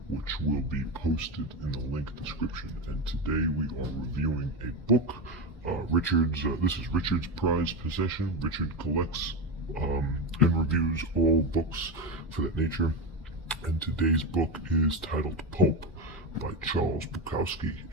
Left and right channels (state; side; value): normal; both; correlation 0.16